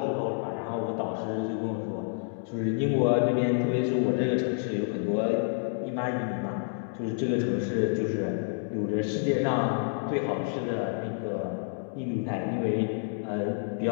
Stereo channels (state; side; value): silent; right; digital silence